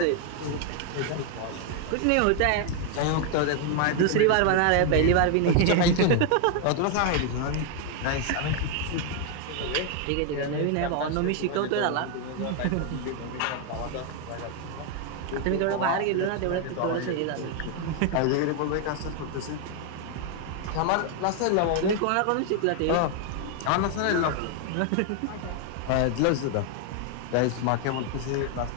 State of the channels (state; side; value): different; both; correlation 0.01